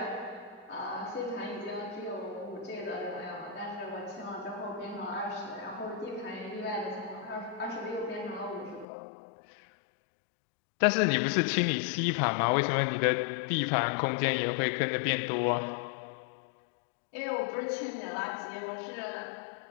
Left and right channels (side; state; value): right; drops out; at 8.8 s